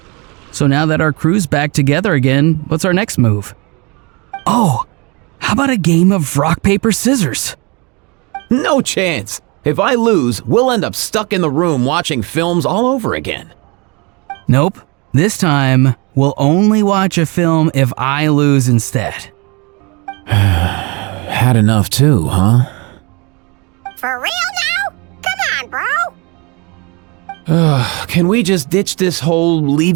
So now that our crew's back together again, what's our next move? Oh, how about a game of rock, paper, scissors? No chance. If I lose, we'll end up stuck in the room watching films all over again. Nope. This time, We'll only watch a film if I lose instead. Had enough too, huh? For real now? Come on, bro. Can we just ditch this whole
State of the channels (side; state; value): left; quieter; 28.5 dB